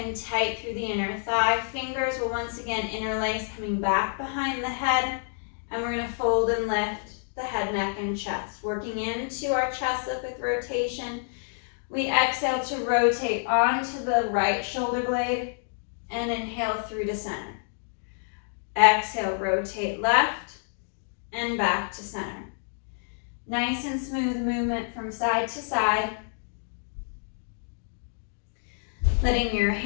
tight through the inner thigh. Fingers will once again interlace, coming back behind the head, and we're gonna fold and lift the head, neck, and chest. Working into our chest lift with rotation. We exhale to rotate onto the right shoulder blade and inhale through to center. Exhale, rotate left and back to center. Nice and smooth movement from side to side. Letting your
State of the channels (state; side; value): silent; right; digital silence